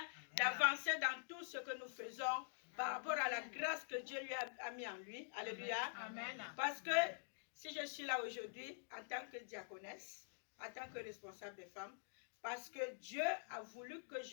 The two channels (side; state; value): right; silent; digital silence